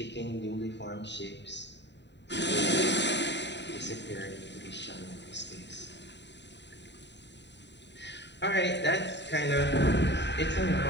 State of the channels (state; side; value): late; right; 0.51 ms